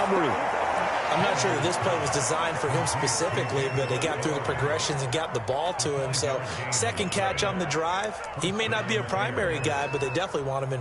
I'm not sure that this play was designed for him specifically, but they got through the progressions and got the ball to him. So second catch on the drive. He may not be a primary guy, but they definitely want him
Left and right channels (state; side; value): identical; both; correlation 1.00